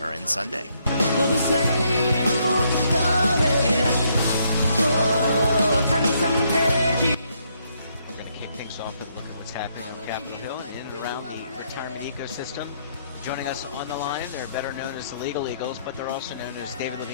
Sunday. For the same old story. Oh, turn some pages. Things off and look at what's happening on Capitol Hill and in and around the retirement ecosystem. Joining us on the line, they're better known as the Legal Eagles, but they're also known as David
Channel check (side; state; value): both; inverted; correlation -0.73